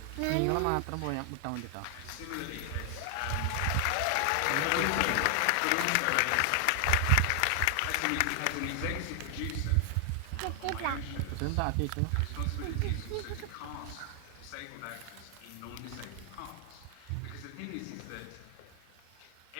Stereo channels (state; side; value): different; both; correlation 0.00